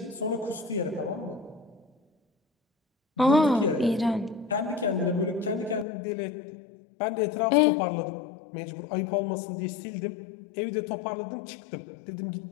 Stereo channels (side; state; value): right; drops out; at 5.9 s